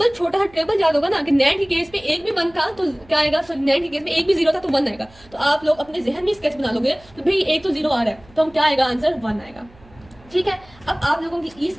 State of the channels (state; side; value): noise; right; hum, 26 dB below the sound